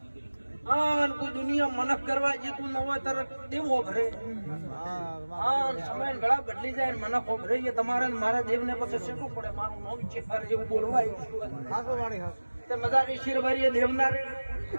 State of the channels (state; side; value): inverted; both; correlation -1.00